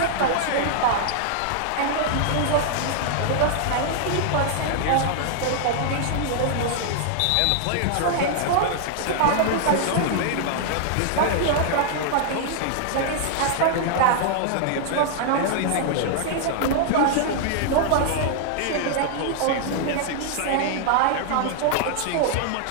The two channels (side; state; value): both; different; correlation -0.01